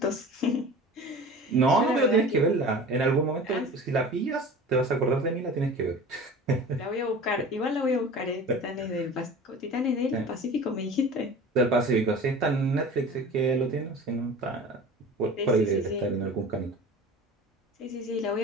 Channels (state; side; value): normal; both; correlation 0.39